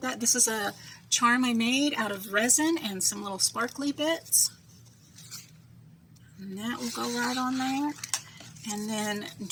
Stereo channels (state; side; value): identical; both; correlation 1.00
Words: that. This is a charm I made out of resin and some little sparkly bits. And that will go right on there. And then